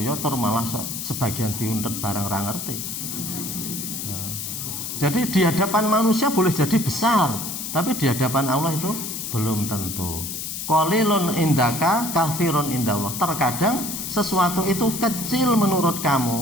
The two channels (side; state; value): left; noise; hiss, 5 dB below the sound